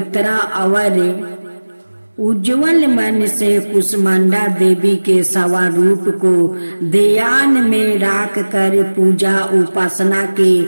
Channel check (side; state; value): both; inverted; correlation -1.00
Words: और उज्जवल मन से कुष्मांडा देवी के स्वरूप को ध्यान में रख कर पूजा उपासना के